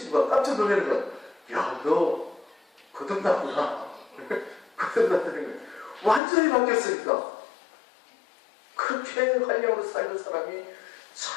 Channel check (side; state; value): right; drops out; at 6.2 s